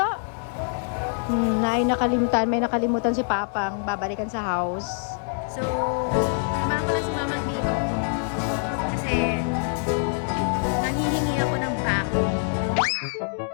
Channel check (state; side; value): silent; right; 59 dB below the other